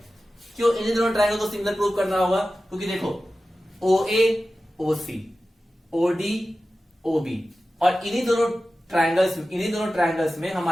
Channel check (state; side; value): normal; both; correlation 0.94